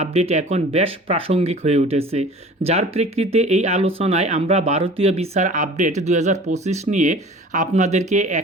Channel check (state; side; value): normal; both; correlation 0.44